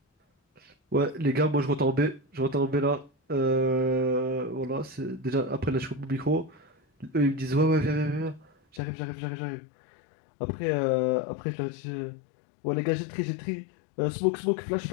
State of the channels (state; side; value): drops out; right; at 8.8 s